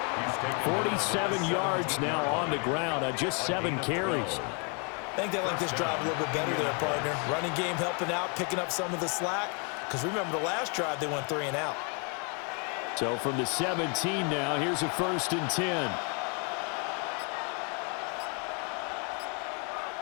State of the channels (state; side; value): quieter; right; 36.6 dB